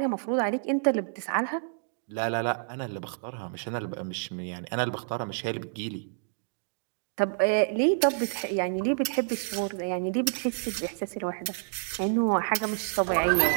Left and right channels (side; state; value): left; silent; digital silence